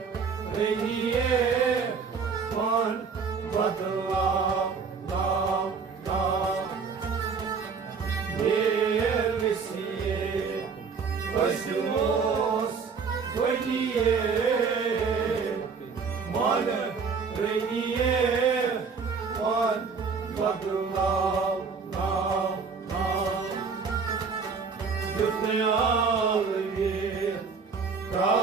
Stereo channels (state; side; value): quieter; left; 5.4 dB